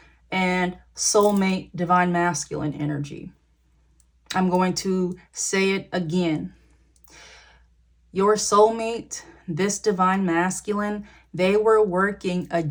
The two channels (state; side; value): identical; both; correlation 1.00